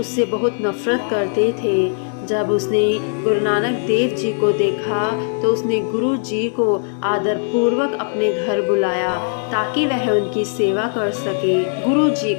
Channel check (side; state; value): right; silent; digital silence